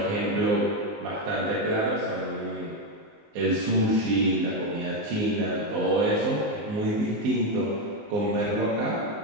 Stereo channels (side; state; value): left; late; 19 ms